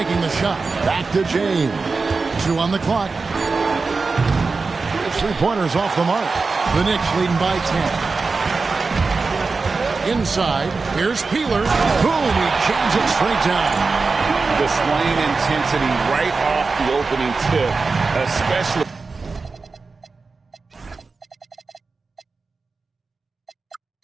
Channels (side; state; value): left; quieter; 4.2 dB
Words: the shot. Back to James. 2 on the clock. The three-pointers off the mark. The Knicks leading by 10. Inside, here's Peeler. Boom, he jams it straight down. Displaying intensity right off the opening tip, especially